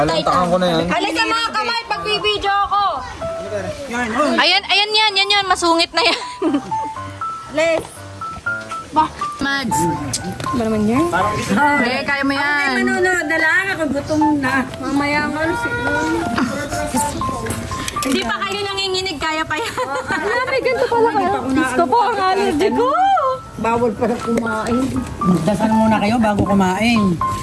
Titan. ko na yan. Halika mga kamay, pagbibideo ako. Ayan yan. Masungit na yan. Les. Mads. Ba naman yan? Okay, kaya mo yan. Manonood na lang ako, gutom na. Mamaya nga, Hindi pa kayo nanginginig, kaya pa yan. May ganito pala kayo. Gusto po ang allergy ko. bawal pala kumain. Magdasal muna kayo bago kumain.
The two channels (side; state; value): both; identical; correlation 1.00